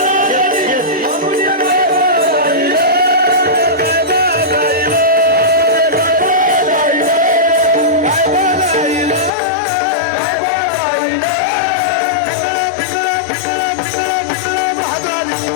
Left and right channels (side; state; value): right; drops out; at 9.3 s